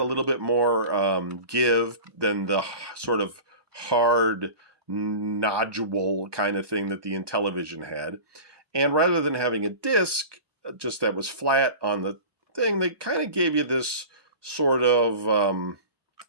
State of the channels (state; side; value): late; left; 1.1 ms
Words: a little bit more give than the sort of hard nodule kind of thing that the Intellivision had. And rather than having a disc just that was flat on the thing, they kind of gave you this sort of,